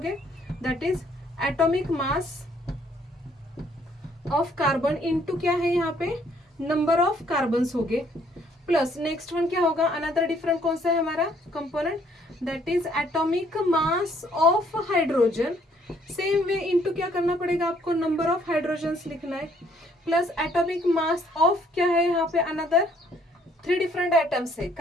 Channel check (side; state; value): both; normal; correlation 0.64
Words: That is atomic mass of carbon into क्या है यहाँ पे? नंबर ऑफ कार्बन्स हो गए, प्लस नेक्स्ट वन क्या होगा? अनदर डिफरेंट कौन सा है हमारा component? That is atomic mass of hydrogen. Same way into क्या करना पड़ेगा आपको? नंबर ऑफ हाइड्रोजन्स लिखना है, प्लस एटॉमिक मास ऑफ क्या है यहाँ पे? अनदर 3 डिफरेंट एटम्स है,